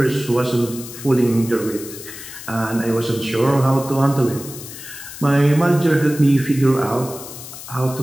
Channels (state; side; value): noise; left; hiss, 13 dB below the sound